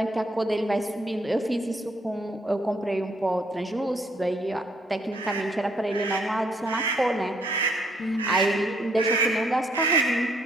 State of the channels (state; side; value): normal; both; correlation 0.69